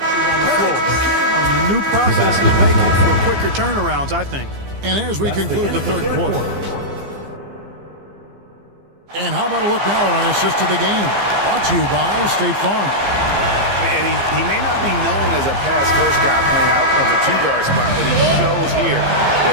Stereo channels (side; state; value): left; late; 15 ms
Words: new process is making for quicker turnarounds, I think. And as we conclude the third quarter. And how about a look now at our assist to the game? Brought to you by State Farm. And he may not be known as a pass-first guy playing out of the two-guard spot, but he shows here that